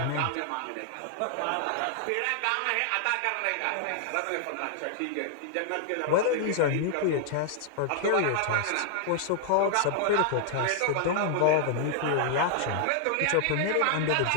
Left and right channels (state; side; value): different; both; correlation 0.00